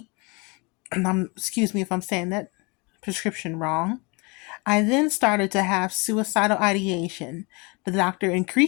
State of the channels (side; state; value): right; quieter; 28.7 dB